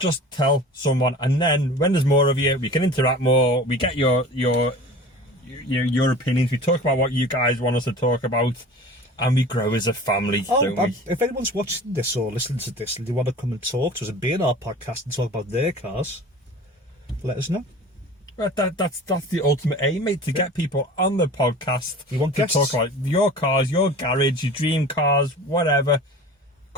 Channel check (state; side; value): normal; both; correlation 0.40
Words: tell someone, and then when there's more of you, we can interact more. We get your opinions. We talk about what you guys want us to talk about, and we grow as a family, don't we? If anyone's watching this or listening to this and they want to come and talk to us and be in our podcast and talk about their cars, let us know. Right, that's the ultimate aim, mate, to get people on the podcast. We want to guests. talk about your cars, your garage, your dream cars, whatever.